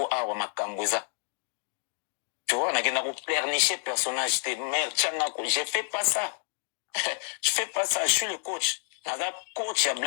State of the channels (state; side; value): silent; right; 59 dB below the other